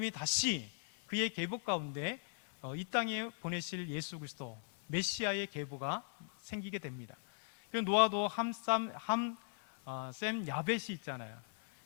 다시 그의 계보 가운데 이 땅에 보내실 예수 그리스도 메시아의 계보가 생기게 됩니다. 그 노아도 셈 야벳이 있잖아요.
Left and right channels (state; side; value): silent; right; 52 dB below the other